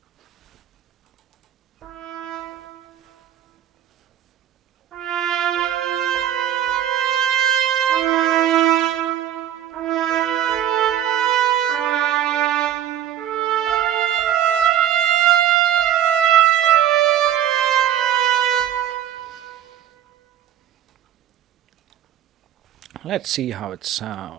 Let's see how it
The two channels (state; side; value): quieter; left; 10.8 dB